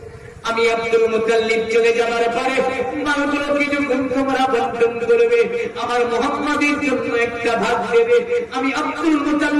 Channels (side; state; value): both; identical; correlation 1.00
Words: আমি আব্দুল মুতাল্লিব চলে যাওয়ার পরে মালগুলোকে যখন তোমরা বন্টন করবে, আমার মোহাম্মদের জন্য একটা ভাগ দেবে। আমি আব্দুল